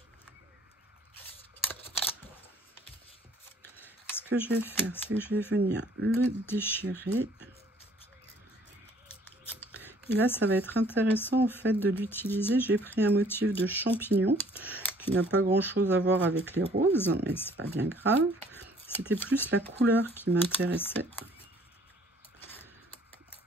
Ce que je vais faire, c'est que je vais venir le déchirer. Et là, ça va être intéressant en fait de l'utiliser. J'ai pris un motif de champignon qui n'a pas grand chose à voir avec les roses, mais c'est pas bien grave. C'était plus la couleur qui m'intéressait.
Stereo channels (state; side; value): normal; both; correlation 0.58